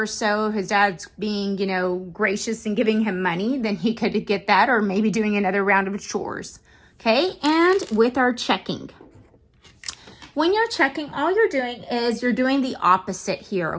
so, his dad's being, you know, gracious and giving him money, then he could get that, or maybe doing another round of chores. Okay, and with our checking. When you're checking, all you're doing is you're doing the opposite here,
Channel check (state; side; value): identical; both; correlation 1.00